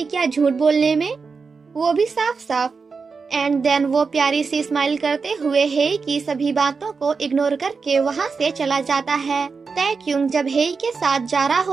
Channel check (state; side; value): quieter; left; 4.9 dB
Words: क्या झूठ बोलने में, वो भी साफ साफ। एंड देन वो प्यारी सी स्माइल करते हुए हेई की सभी बातों को इग्नोर करके वहाँ से चला जाता है। तैक्युंग जब हेई के साथ जा रहा